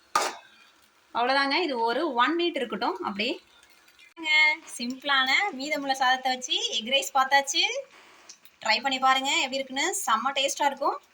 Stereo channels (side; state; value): both; identical; correlation 1.00